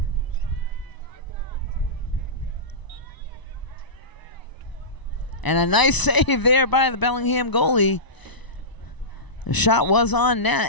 And a nice save there by the Bellingham goalie. The shot was on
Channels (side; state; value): right; late; 1.0 ms